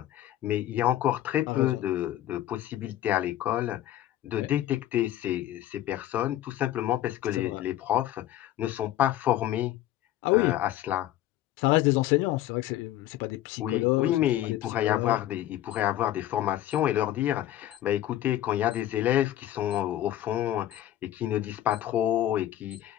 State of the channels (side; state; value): right; quieter; 13.1 dB